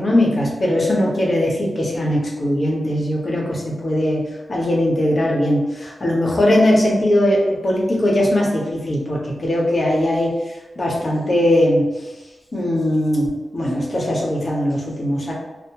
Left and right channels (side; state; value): both; normal; correlation 0.91